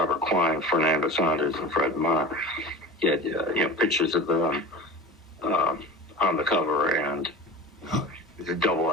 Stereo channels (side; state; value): both; normal; correlation 0.32